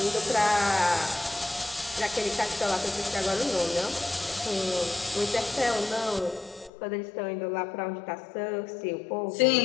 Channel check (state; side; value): drops out; right; at 6.7 s